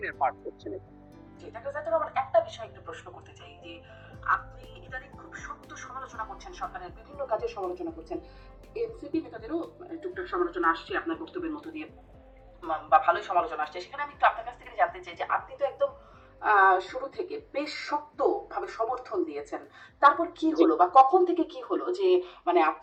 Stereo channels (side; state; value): both; identical; correlation 1.00